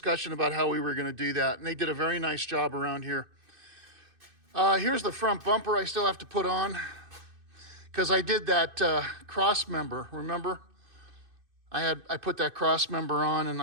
about how we were going to do that, and they did a very nice job around here. Here's the front bumper I still have to put on because I did that cross member, remember? I put that cross member on and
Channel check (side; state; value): left; late; 2.6 ms